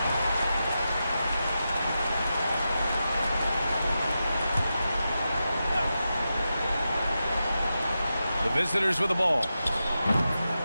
The visitors with the ball.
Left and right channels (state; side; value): inverted; both; correlation -0.90